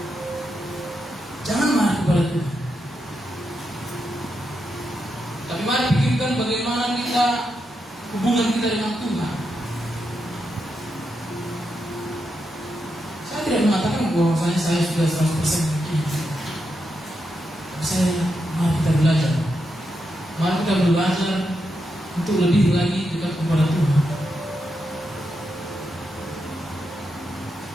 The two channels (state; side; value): normal; both; correlation 0.84